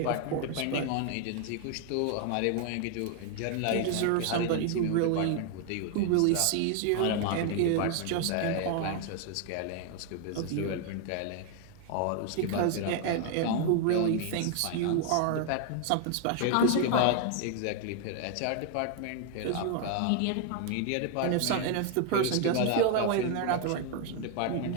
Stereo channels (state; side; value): different; both; correlation 0.00